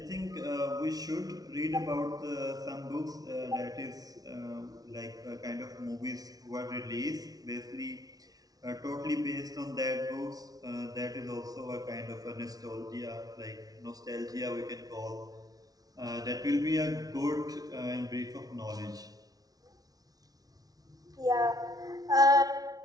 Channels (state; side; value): late; left; 0.18 ms